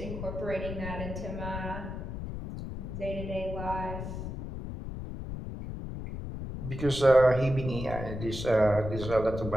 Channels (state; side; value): noise; left; rumble, 7 dB below the sound